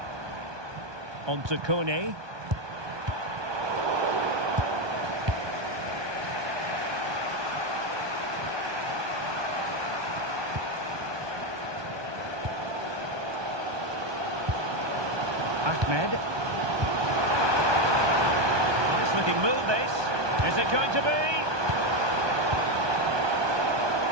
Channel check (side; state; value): left; late; 1.2 ms